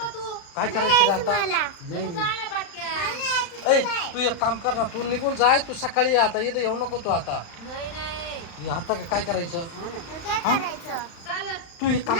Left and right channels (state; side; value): late; right; 35 ms